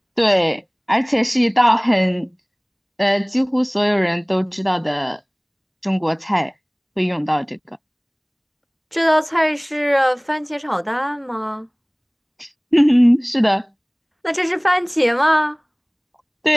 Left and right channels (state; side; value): identical; both; correlation 1.00